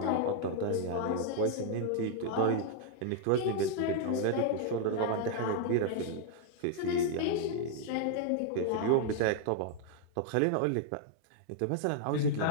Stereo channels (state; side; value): different; both; correlation -0.01